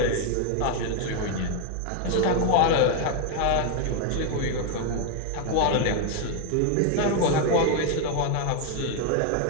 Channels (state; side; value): different; both; correlation 0.01